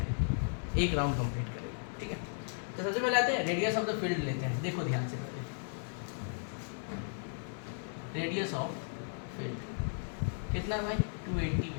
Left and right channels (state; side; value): silent; right; 54 dB below the other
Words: एक राउंड कंप्लीट करेगी, ठीक है। तो सबसे पहले आते हैं रेडियस ऑफ द फील्ड लेते हैं, देखो ध्यान से पहले रेडियस ऑफ फील्ड कितना है भाई, 280